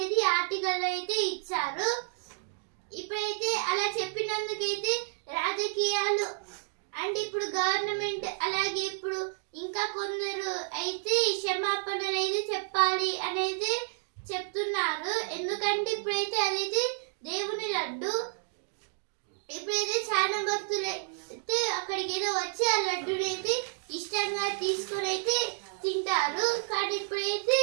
అయితే ఆర్టికల్ అయితే ఇచ్చారు. ఇప్పుడైతే అలా చెప్పినందుకైతే రాజకీయాలు అంటే ఇప్పుడు గవర్నమెంట్ అలాగే ఇప్పుడు ఇంకా కొందరు అయితే క్షమాపణలు అయితే చెప్పాలి అనేది చెప్తున్నారు. ఎందుకంటే ఇప్పుడైతే అదైతే దేవుని లడ్డు. ఇప్పుడైతే చాలా భక్తులు అయితే అక్కడికి ఏదో వచ్చి ఆ లడ్డుని అయితే ఇష్టంగా తీసుకొని అయితే తింటారు. కానీ ఇప్పుడైతే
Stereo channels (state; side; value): silent; left; digital silence